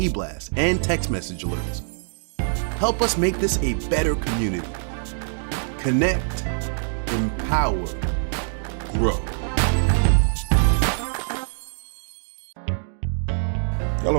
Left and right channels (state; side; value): silent; left; digital silence